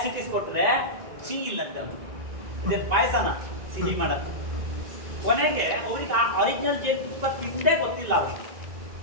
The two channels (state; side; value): late; left; 1.9 ms